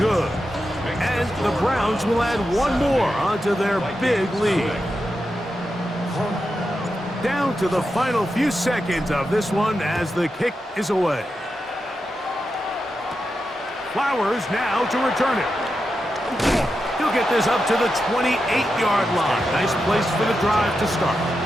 And the Browns will add 1 more onto their big lead. Down to the final few seconds of this one as the kick is away. Flowers now to return it. He'll get this up to the 28-yard line. Nice place for the drive to start.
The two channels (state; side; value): normal; both; correlation 0.88